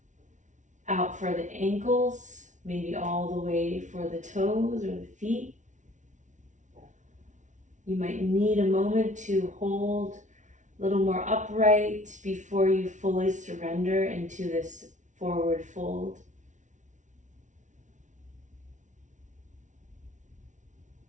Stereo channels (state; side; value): late; left; 0.36 ms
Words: out for the ankles, maybe all the way for the toes or the feet. You might need a moment to hold a little more upright before you fully surrender into this forward fold.